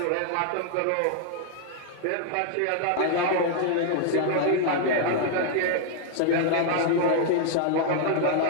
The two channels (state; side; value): different; both; correlation 0.00